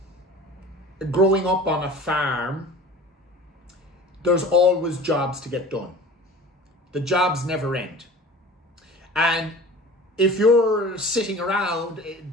growing up on a farm, there's always jobs to get done. The jobs never end. And if you're sitting around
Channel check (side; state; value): both; normal; correlation 0.40